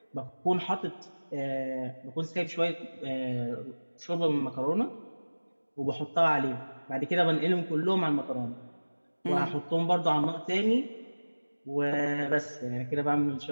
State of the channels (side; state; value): both; inverted; correlation -1.00